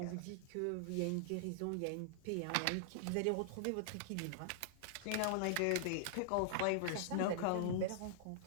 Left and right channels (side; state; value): both; different; correlation -0.01